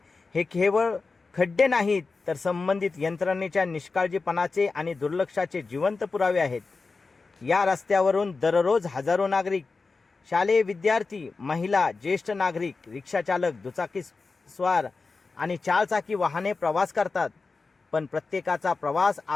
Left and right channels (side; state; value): right; quieter; 4.1 dB